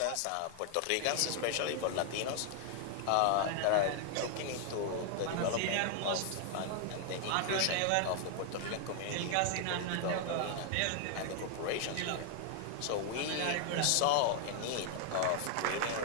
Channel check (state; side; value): different; both; correlation 0.00